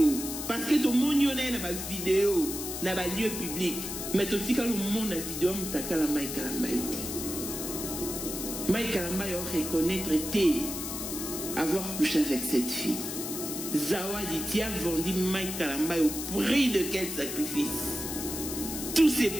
Parce que tout le monde a une vidéo. Dans un lieu public. Mais tout le monde a une vidéo. Mouta la Mike Kalamba. Mike Kalamba a reconnaître avoir couché avec cette fille. Zawadi, tu as vendu Mike Kalamba au prix de quel sacrifice? Tous ces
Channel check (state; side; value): noise; left; hiss, 6 dB below the sound